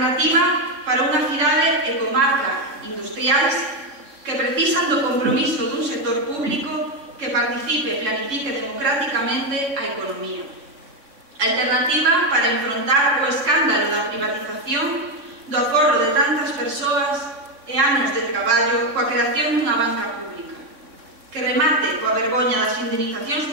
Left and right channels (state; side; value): late; left; 3.6 ms